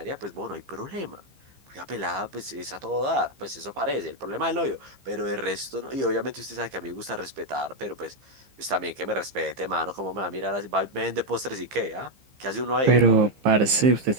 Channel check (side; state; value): left; late; 15 ms